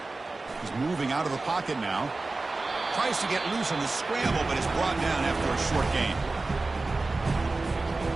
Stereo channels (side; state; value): left; quieter; 3.4 dB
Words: He's moving out of the pocket now. Tries to get loose on the scramble, but is brought down after a short gain.